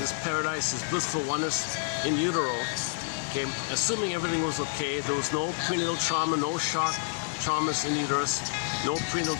paradise, his blissful oneness in utero. Okay, assuming everything was okay, there was no prenatal trauma, no shock traumas in uterus, no prenatal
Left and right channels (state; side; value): silent; right; digital silence